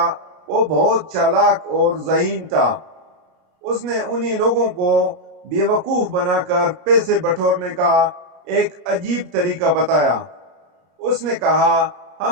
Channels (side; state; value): left; late; 33 ms